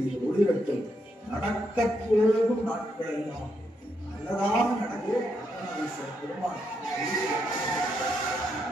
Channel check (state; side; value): normal; both; correlation 0.79